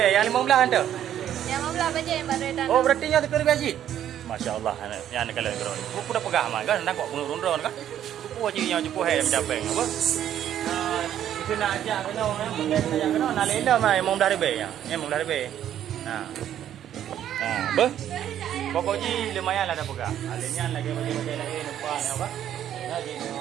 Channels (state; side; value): quieter; left; 10.7 dB